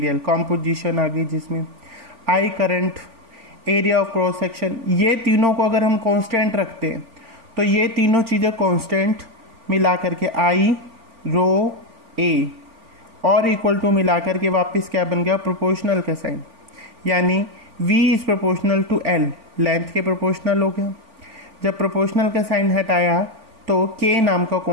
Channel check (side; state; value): left; late; 4.4 ms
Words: composition आ गई जिसमें, I current, area of cross section. ये तीनों को अगर हम कांस्टेंट रखते हैं तो ये तीनों चीज़ें कांस्टेंट मिला करके आई रो ए और इक्वल टू मिला करके वापस क्या बन गया, प्रोपोर्शनल का साइन, यानी V is proportional to L, length के प्रोपोर्शनल हो गया। जब प्रोपोर्शनल का साइन हटाया तो K नाम का